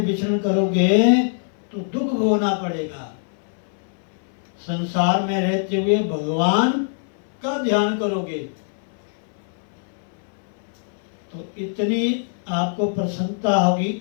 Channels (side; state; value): right; silent; 58 dB below the other